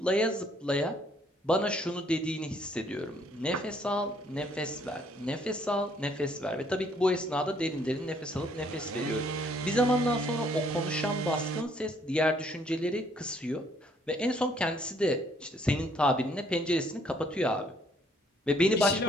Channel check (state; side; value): normal; both; correlation 0.65